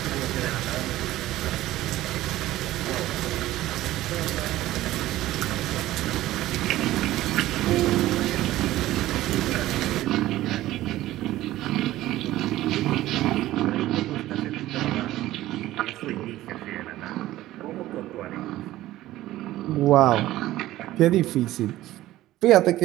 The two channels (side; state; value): left; quieter; 15.4 dB